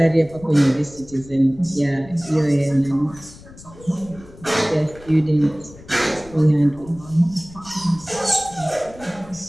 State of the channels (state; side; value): noise; left; rumble, 20 dB below the sound